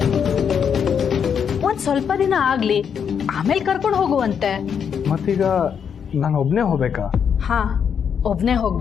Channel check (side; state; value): right; quieter; 7.4 dB